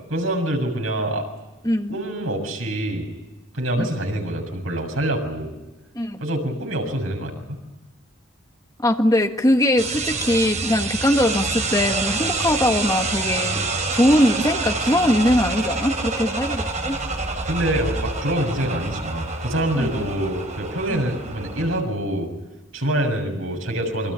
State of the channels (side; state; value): both; normal; correlation 0.59